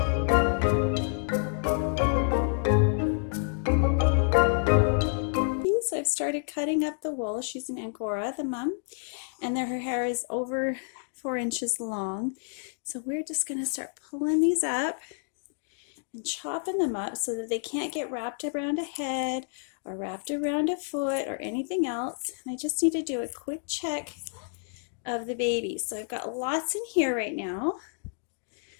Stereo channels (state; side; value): silent; right; digital silence